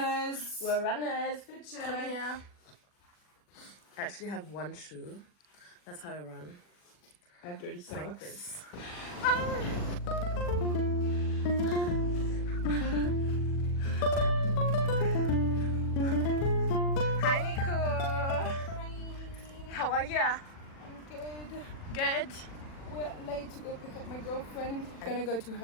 We're runners. Good Come job. here. I actually have one shoe. That's how I run. I have dirty Like socks. this. Hi, Nico. How are you? I'm good. Good. We're late to go pick up my girlfriend. Gonna go to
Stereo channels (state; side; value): late; right; 40 ms